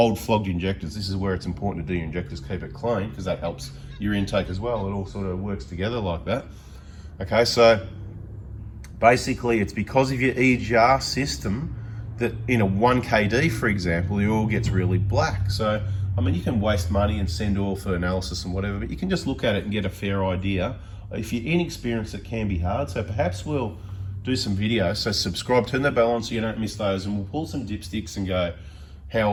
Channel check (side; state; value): both; identical; correlation 1.00